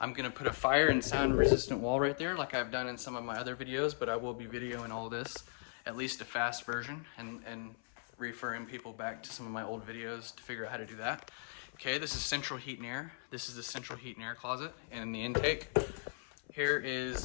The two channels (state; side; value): silent; right; 52 dB below the other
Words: I'm gonna put a fire and sound resistant wall right there like I've done in some of my other videos, but I will be videoing all this, at least a fast version, and referring people back to some of my old videos to figure out how to do that. Okay, this is central heat and air. This is the central heat and air closet and the intake. Here